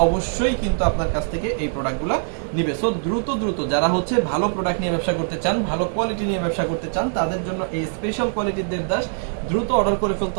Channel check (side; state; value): left; silent; digital silence